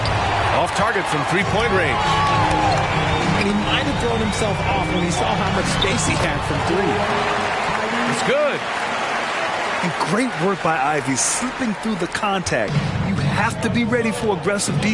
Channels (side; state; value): both; identical; correlation 1.00